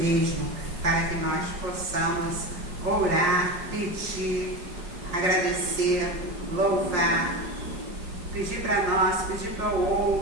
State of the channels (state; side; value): late; left; 5.6 ms